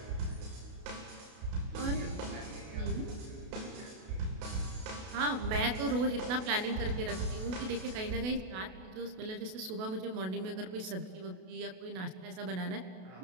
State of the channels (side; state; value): left; late; 32 ms